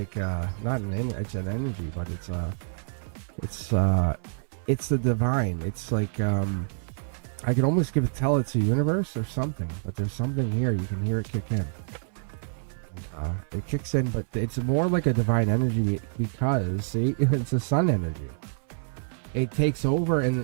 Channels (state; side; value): silent; left; 59 dB below the other